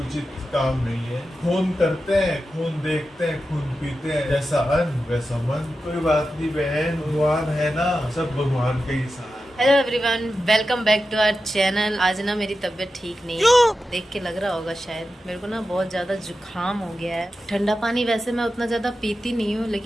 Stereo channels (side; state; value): both; normal; correlation 0.91